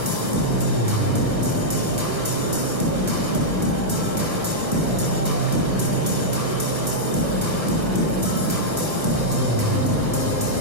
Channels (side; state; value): left; late; 1.3 ms